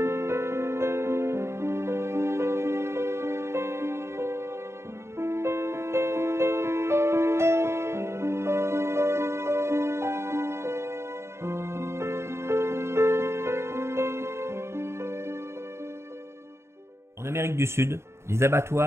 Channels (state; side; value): late; left; 0.13 ms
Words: Amérique du Sud, les